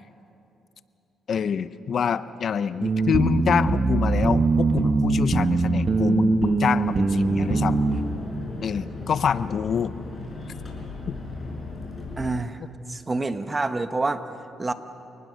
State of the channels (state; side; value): normal; both; correlation 0.82